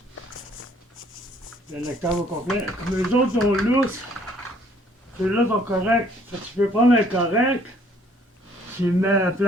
Le lecteur au complet. Comme les autres sont lousses, ceux-là sont corrects. Tu peux prendre un correct, Tu le mets à la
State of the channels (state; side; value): normal; both; correlation 0.60